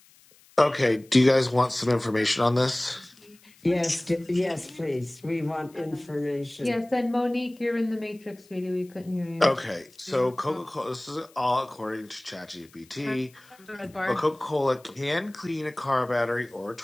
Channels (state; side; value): noise; left; hiss, 28 dB below the sound